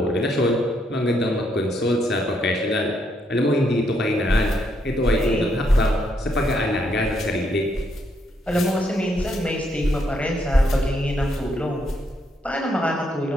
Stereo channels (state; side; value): normal; both; correlation 0.75